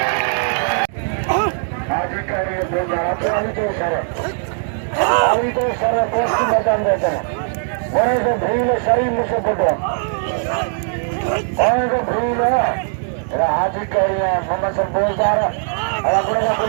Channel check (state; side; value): silent; left; digital silence